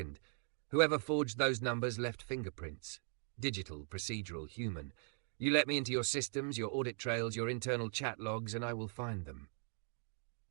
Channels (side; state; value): left; silent; 51 dB below the other